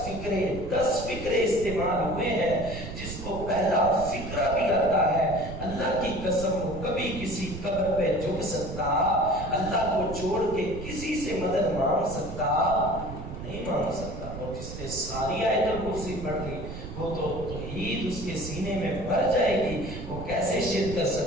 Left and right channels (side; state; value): right; noise; rumble, 9 dB below the sound